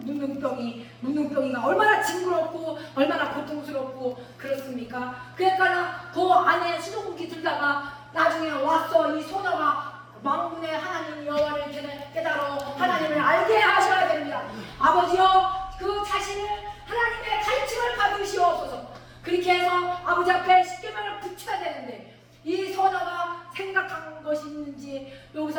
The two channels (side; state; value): both; identical; correlation 1.00